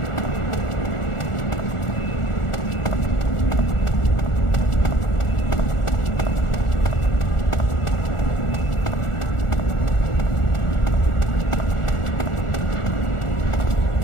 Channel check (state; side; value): late; right; 1.4 ms